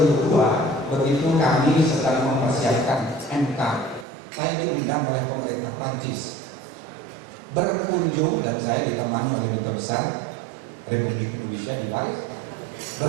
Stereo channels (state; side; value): drops out; left; at 4.0 s